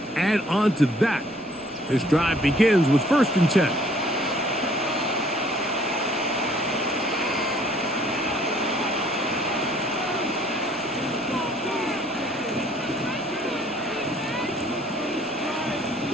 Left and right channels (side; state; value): right; noise; rumble, 29 dB below the sound